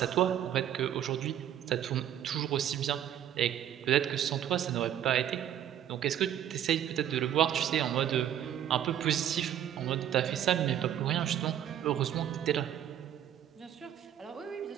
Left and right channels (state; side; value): quieter; left; 10.6 dB